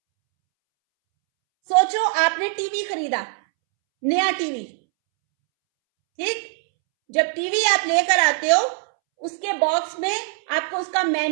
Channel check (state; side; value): silent; left; 64 dB below the other